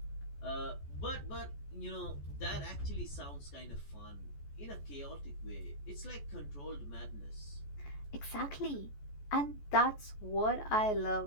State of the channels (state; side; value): late; right; 14 ms